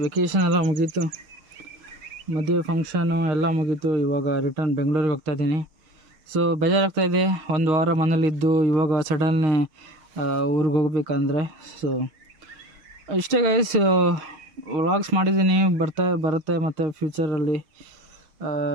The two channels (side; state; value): left; late; 6.4 ms